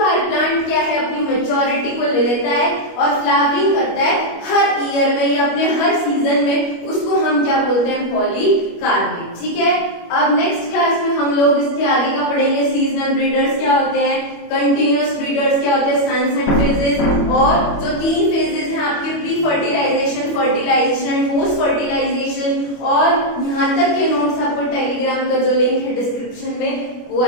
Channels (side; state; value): right; late; 25 ms